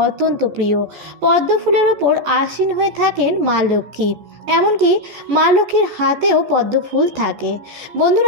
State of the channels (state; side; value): late; left; 14 ms